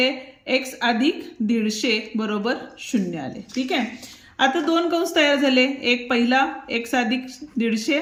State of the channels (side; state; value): both; identical; correlation 1.00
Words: x अधिक 150 बरोबर 0 आले. ठीक आहे. आता दोन कंस तयार झाले, एक पहिला x अधिक